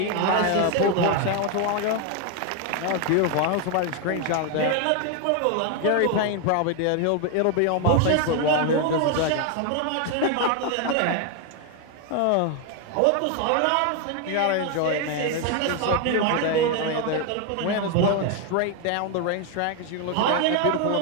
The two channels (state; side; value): different; both; correlation 0.01